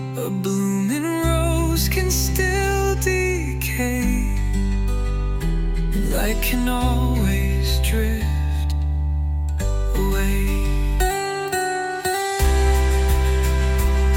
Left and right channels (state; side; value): identical; both; correlation 1.00